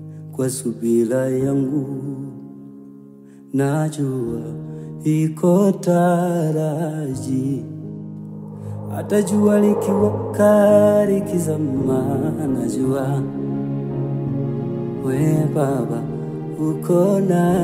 kwa subira yangu, najua iko taraji. Hata jua likiwaka likizama, najua we Baba uko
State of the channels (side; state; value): both; identical; correlation 1.00